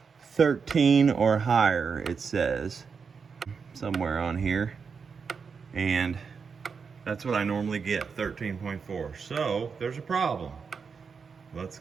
13 or higher, it says, somewhere on here. And that's what I normally get, 13.4. So there's a problem. Let's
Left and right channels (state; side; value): quieter; left; 5.7 dB